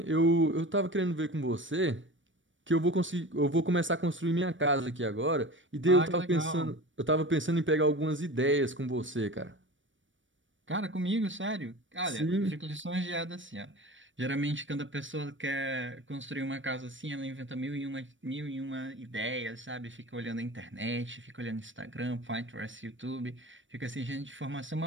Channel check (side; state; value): left; late; 0.56 ms